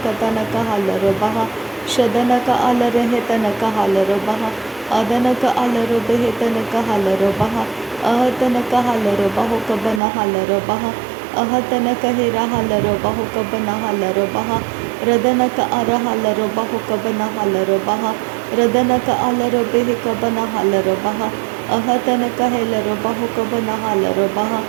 का तन का हलर बहा शदन का अलर हेतन का हलर बहा अदन का अलर बेह तन का हलर बहा अहतन का हलर बहु का बना हलर बहा अहतन का हेरा हलर बहु का बना हलर बहा रदन का अर हलर बहु का बना हलर बहा रदन का अलर बेह का बना हलर बहा अहतन का हेलर बहु का बना हलर बहा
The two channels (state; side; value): drops out; left; at 10.0 s